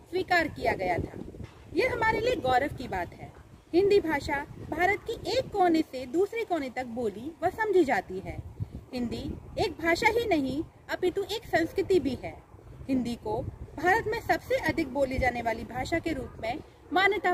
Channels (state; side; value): identical; both; correlation 1.00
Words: किया गया था। यह हमारे लिए गौरव की बात है। हिंदी भाषा भारत की एक कोने से दूसरे कोने तक बोली व समझी जाती है। हिंदी एक भाषा ही नहीं अपितु एक संस्कृति भी है। हिंदी को भारत में सबसे अधिक बोली जाने वाली भाषा के रूप में मान्यता